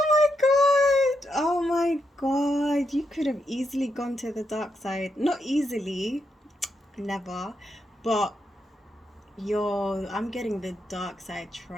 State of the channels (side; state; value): both; normal; correlation 0.82